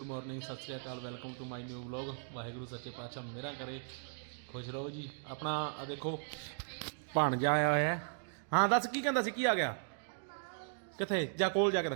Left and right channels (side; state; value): left; silent; digital silence